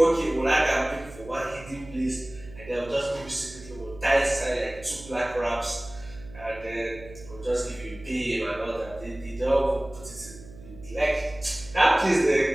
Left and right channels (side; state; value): right; noise; hum, 18 dB below the sound